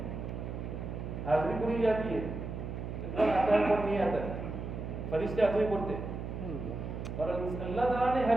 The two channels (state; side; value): noise; right; hum, 6 dB below the sound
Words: حاضری پوری جاتی ہے، اتنا آتا ہے پر نہیں آتا ہے، فرشتے حاضری پڑھتے، اور اللہ تعالیٰ نے